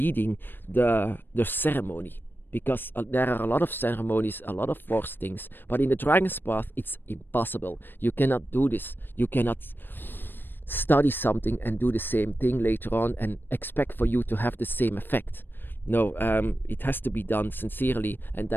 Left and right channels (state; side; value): late; right; 0.096 ms